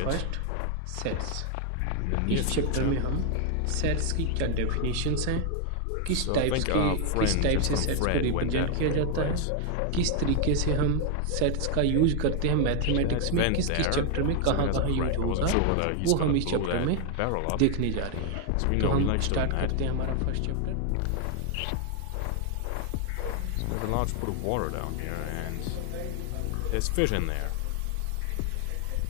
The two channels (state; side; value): different; both; correlation 0.00